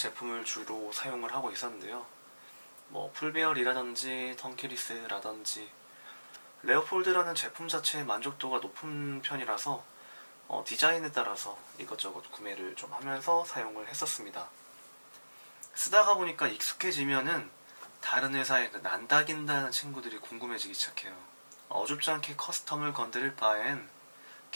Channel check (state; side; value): inverted; both; correlation -1.00